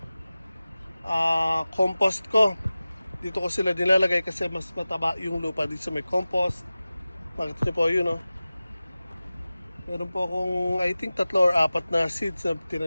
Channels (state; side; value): inverted; both; correlation -0.97